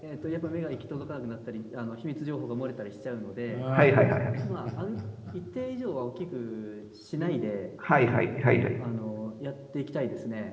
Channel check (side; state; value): both; identical; correlation 1.00